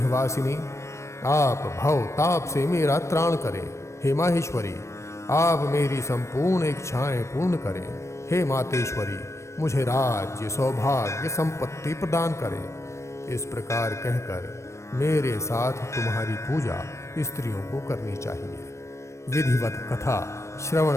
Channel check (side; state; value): right; late; 0.14 ms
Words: आप भव ताप से मेरा त्राण करें। हे माहेश्वरी, आप मेरी संपूर्ण इच्छाएं पूर्ण करें। हे मातेश्वरी, मुझे राज्य, सौभाग्य, संपत्ति प्रदान करें। इस प्रकार कहकर मेरे साथ तुम्हारी पूजा स्त्रियों को करनी चाहिए। विधिवत कथा